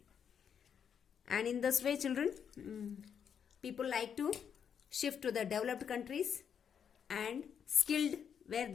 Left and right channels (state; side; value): quieter; right; 7.7 dB